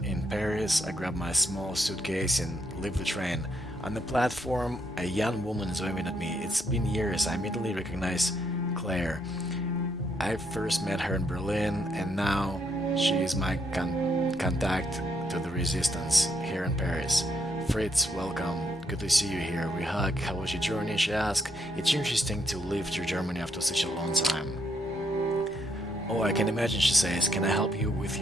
in Paris. I grab my small suitcase and leave the train. On the platform, a young woman is waving at me. It's been years. I immediately recognize Claire. I first met her in Berlin, and now she is my contact to the resistance here in Paris. Fritz, welcome. Good to see you here. We hug. How was your journey? She asked. It's interesting to leave to Germany after such a long time. Oh, I can imagine, she says. Can I help you with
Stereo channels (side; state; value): both; normal; correlation 0.74